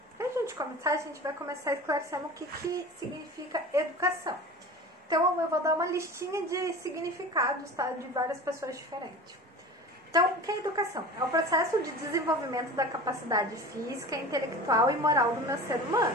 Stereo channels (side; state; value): both; normal; correlation 0.35